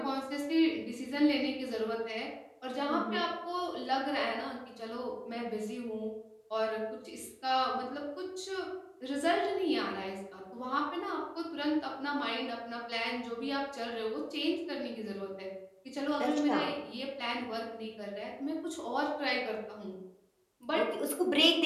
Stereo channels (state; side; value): identical; both; correlation 1.00